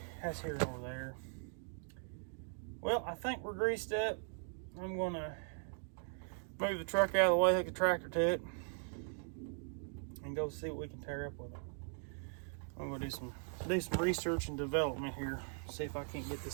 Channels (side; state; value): left; silent; 51 dB below the other